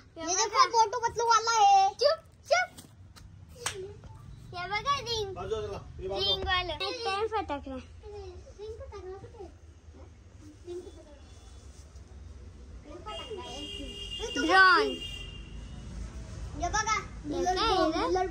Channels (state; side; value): identical; both; correlation 1.00